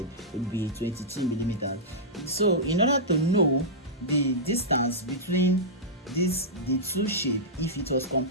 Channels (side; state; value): both; normal; correlation -0.12